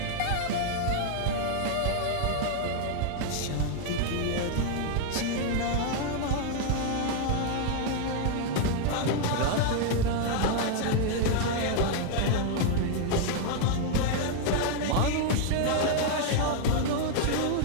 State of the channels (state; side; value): different; both; correlation 0.00